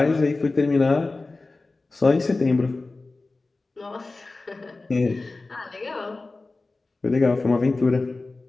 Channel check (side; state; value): right; quieter; 3.4 dB